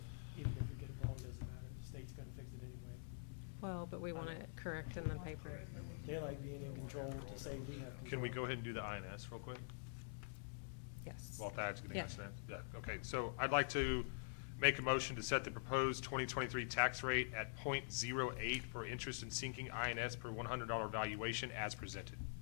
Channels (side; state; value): right; silent; digital silence